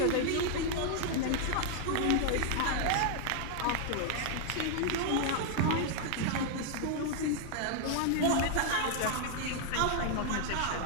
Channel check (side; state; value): both; different; correlation 0.00